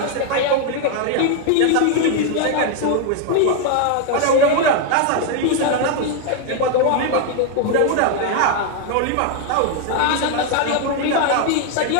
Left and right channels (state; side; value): different; both; correlation 0.01